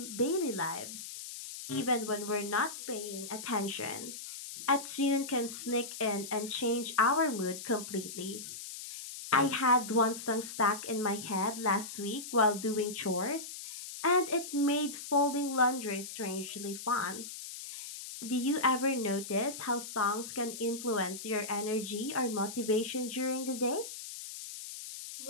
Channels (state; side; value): noise; left; hiss, 10 dB below the sound